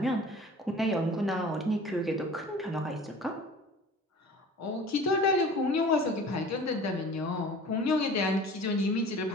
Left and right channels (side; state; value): both; normal; correlation 0.43